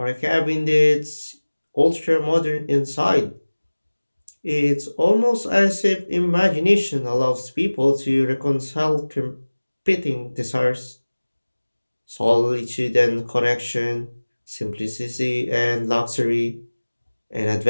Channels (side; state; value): both; inverted; correlation -1.00